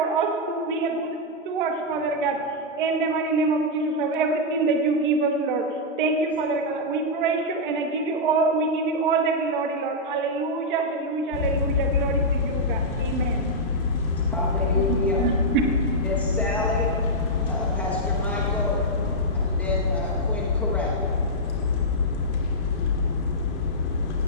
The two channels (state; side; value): normal; both; correlation -0.07